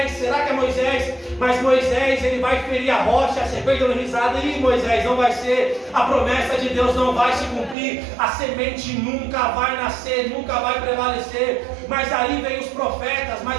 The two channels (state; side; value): drops out; left; at 7.8 s